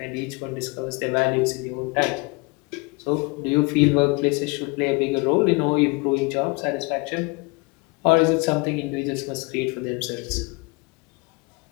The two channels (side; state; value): right; quieter; 27.9 dB